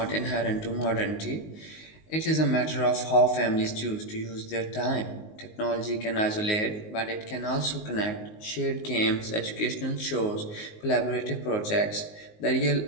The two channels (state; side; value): late; right; 19 ms